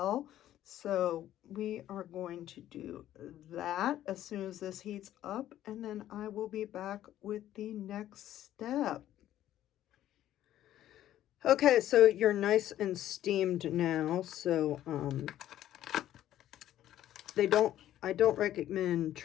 So we are going to do that as soon as this heats up, and then I will be back with the next step. Okay, so you're nice and steamed now. So I don't recommend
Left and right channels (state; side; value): quieter; right; 12.6 dB